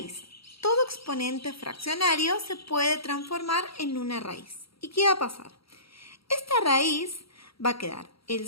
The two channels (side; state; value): right; late; 0.75 ms